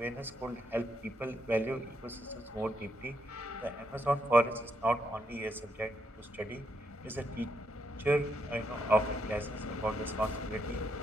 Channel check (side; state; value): both; normal; correlation 0.78